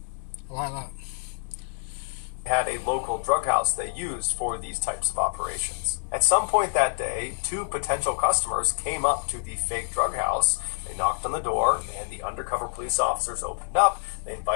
I like that. Had a local drug house they used for these types of operations. At some point that day, 2 potential customers came up to the fake drug house. They knocked on the door, and the undercover police officers opened up. They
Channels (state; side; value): silent; right; digital silence